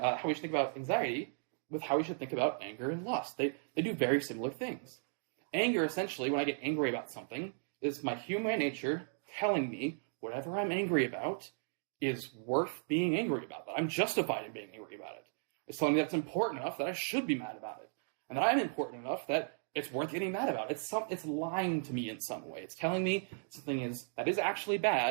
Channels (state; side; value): silent; left; digital silence